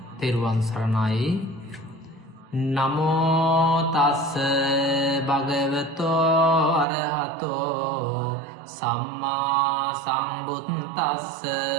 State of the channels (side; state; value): left; drops out; at 6.9 s